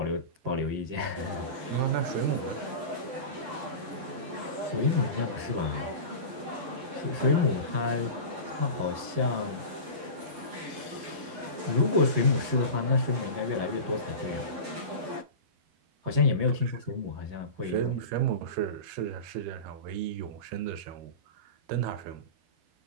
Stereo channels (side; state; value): left; late; 12 ms